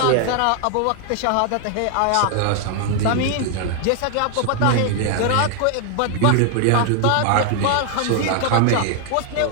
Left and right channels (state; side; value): different; both; correlation 0.00